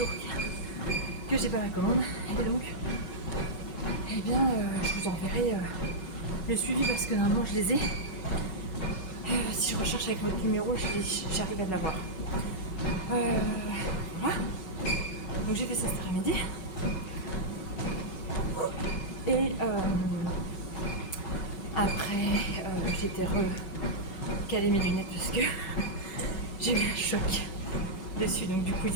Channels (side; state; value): right; late; 5.3 ms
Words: que j'ai pas la commande. Et donc, eh bien, je vous enverrai le suivi parce que normalement je les ai. Si je recherche avec votre numéro, j'arrive à l'avoir. Voilà. Donc j'ai fait ça cet après-midi. Et après, j'étais recalé mes lunettes parce que j'ai eu un choc dessus. Donc du coup, ils